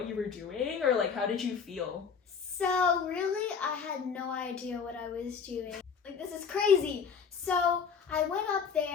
you were doing, or like how did you feel? So really, I had no idea what I was doing. Like, this is crazy. So I went up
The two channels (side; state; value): right; quieter; 6.3 dB